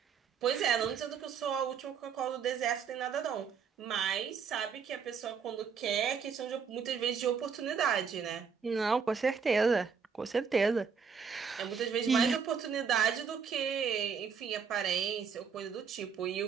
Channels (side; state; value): left; quieter; 6.3 dB